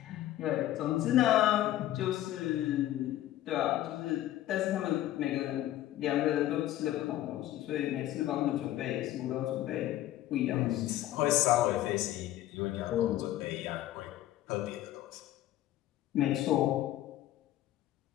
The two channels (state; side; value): quieter; right; 13.9 dB